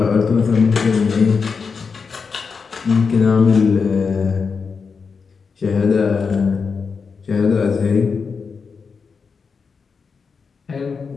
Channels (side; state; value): right; quieter; 5.4 dB